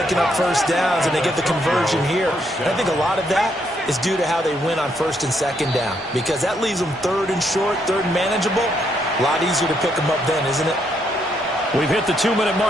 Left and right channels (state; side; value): normal; both; correlation 0.74